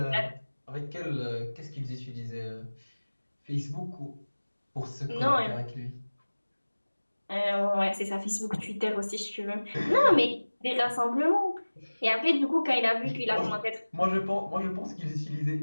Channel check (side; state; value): both; inverted; correlation -1.00